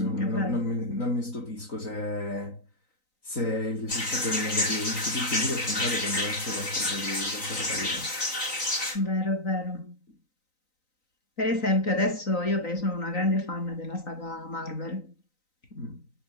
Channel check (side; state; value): right; late; 3.9 ms